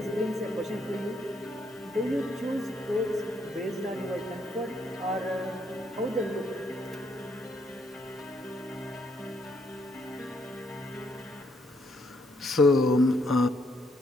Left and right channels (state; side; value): normal; both; correlation 0.73